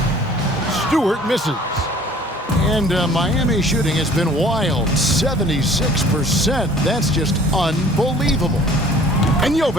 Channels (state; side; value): normal; both; correlation 0.51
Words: Stewart misses. And Miami shooting has been wild. 76%. That's just unbelievable. And